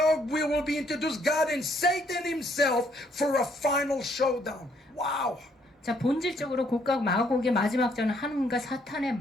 we will be introduced God and Satan himself for a final showdown. Wow. 자, 본질적으로 곡각 마곡의 마지막 전은 하나님과 사탄의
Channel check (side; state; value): both; normal; correlation 0.68